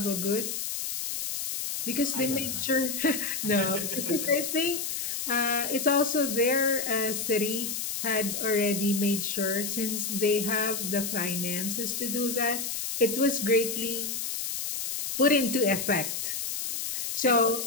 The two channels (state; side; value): noise; left; hiss, 3 dB below the sound